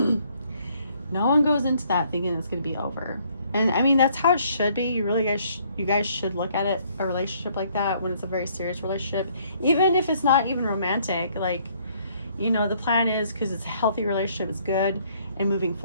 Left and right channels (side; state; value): both; inverted; correlation -0.65